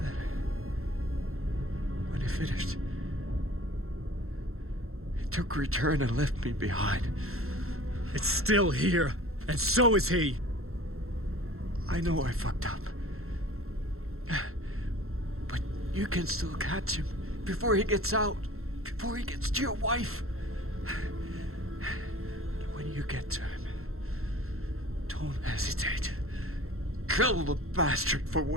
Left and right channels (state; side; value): late; left; 0.62 ms